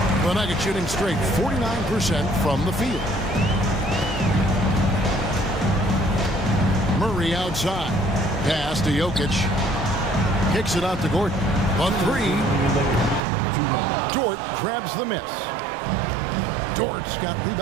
The Nuggets shooting straight 49% from the field. Murray outside. Pass to Jokic. Kicks it out to Gordon. On 3. Dort grabs the miss. Dort's got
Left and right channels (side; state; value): left; drops out; at 13.2 s